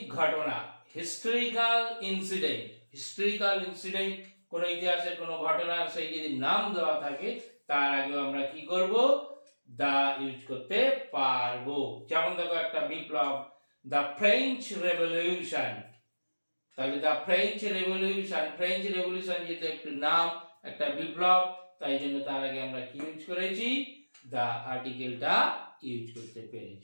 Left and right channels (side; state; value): both; inverted; correlation -1.00